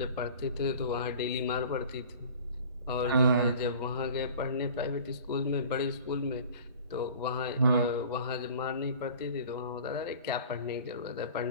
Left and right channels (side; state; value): both; inverted; correlation -0.44